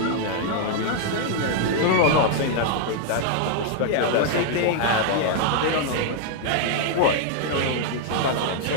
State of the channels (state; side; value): different; both; correlation 0.00